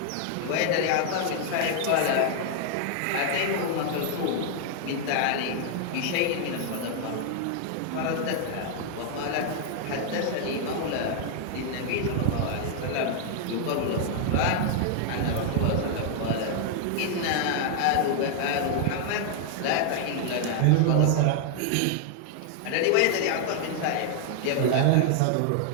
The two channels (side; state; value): both; different; correlation 0.00